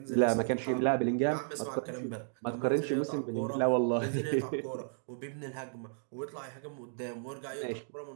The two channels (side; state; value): left; silent; digital silence